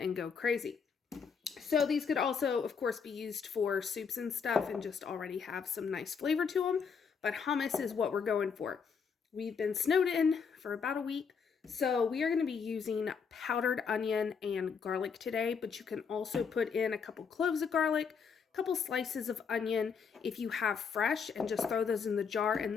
go crazy. So these could also, of course, be used for soups and stuff and just already have some nice flavor to them. But hummus is what we're going for. We've been snowed in for about a week. So we are going to be using powdered onion and garlic today. But you can also put in a couple cloves of garlic, a couple slices of onion if you have fresh, and just throw those in the jar and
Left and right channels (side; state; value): right; quieter; 6.1 dB